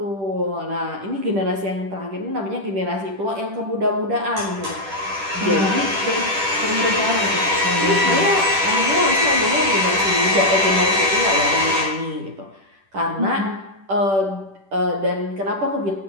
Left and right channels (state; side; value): late; left; 10 ms